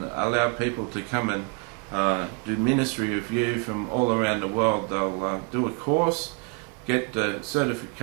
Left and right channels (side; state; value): left; quieter; 32.2 dB